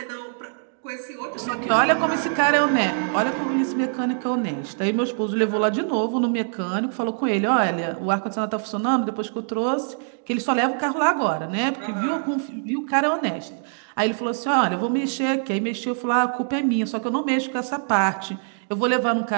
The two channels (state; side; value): silent; left; digital silence